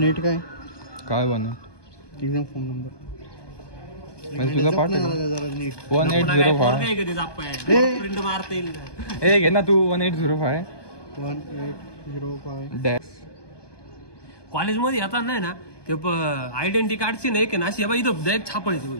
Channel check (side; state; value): right; late; 1.2 ms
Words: काय बन एक्झाम फॉर्म नंबर म्हणजे तुझा पाठ आहे जरा नीट 1805. प्रिंट मारता येईल ए घे ना तू 1805 1805 कॉलेजमध्ये येतात नाही ना ते आयडेंटिटी कार्डची नाही की ना अशी इथं डायरेक्ट छापायची होई